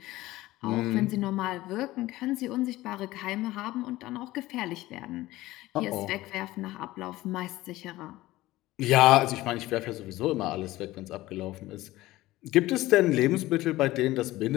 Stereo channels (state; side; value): quieter; right; 17.4 dB